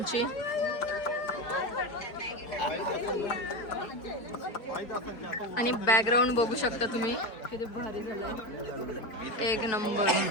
आणि बॅकग्राऊंड बघू शकता तुम्ही किती भारी झालंय. एक नंबर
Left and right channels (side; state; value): right; late; 4.5 ms